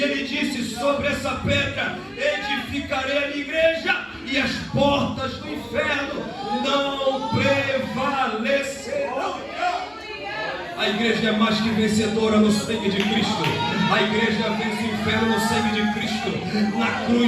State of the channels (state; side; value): identical; both; correlation 1.00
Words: ele disse: sobre essa pedra edificarei a minha igreja, e as portas do inferno não prevalecerão. A igreja é mais que vencedora no sangue de Cristo. A igreja vence o inferno no sangue de Cristo. Na